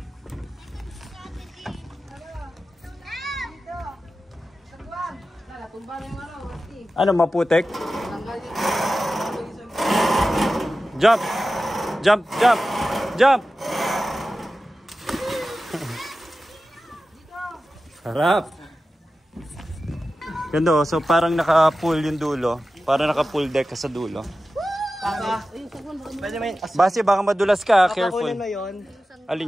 Ano, maputek? Jump! Jump! Jump! Jump! Harap! Ganda oh, so parang naka-pull yung dulo. Parang naka-pull deck ka sa dulo. Basti, baka madulas ka, careful. Papakunin mo yun.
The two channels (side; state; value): both; normal; correlation 0.94